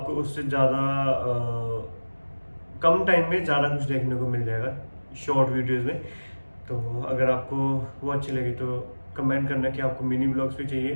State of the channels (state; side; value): inverted; both; correlation -1.00